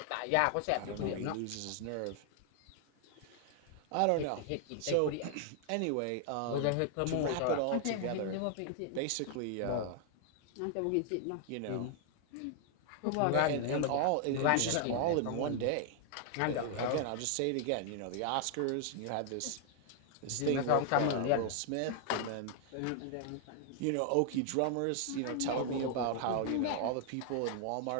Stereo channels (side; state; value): both; different; correlation 0.00